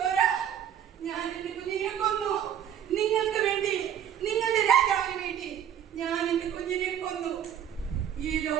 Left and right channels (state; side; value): quieter; left; 9.7 dB